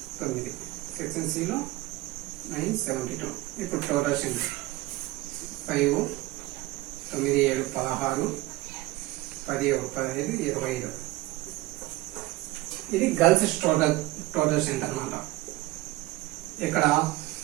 టోటల్ స్ట్రెంత్ 5, 9, 7, 16, 10, 15, 25. ఇది గర్ల్స్ టోటల్ స్ట్రెంత్ అన్నమాట. ఇక్కడ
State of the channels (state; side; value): quieter; left; 18.9 dB